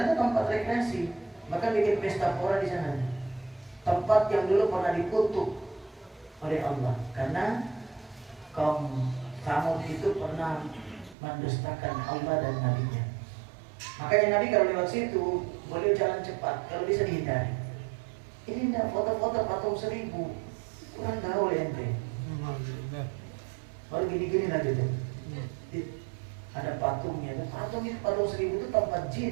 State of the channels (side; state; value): left; drops out; at 11.2 s